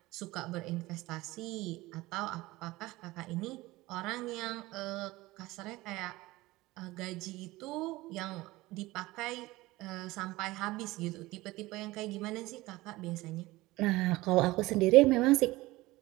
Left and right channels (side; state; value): left; quieter; 19.5 dB